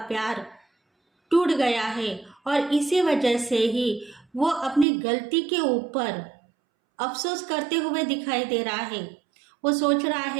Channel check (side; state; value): left; drops out; at 4.9 s